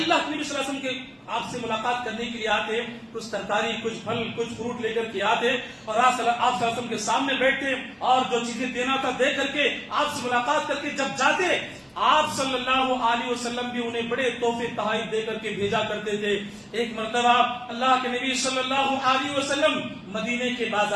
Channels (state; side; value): identical; both; correlation 1.00